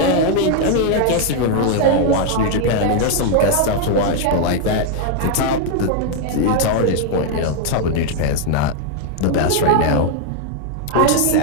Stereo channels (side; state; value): both; different; correlation 0.00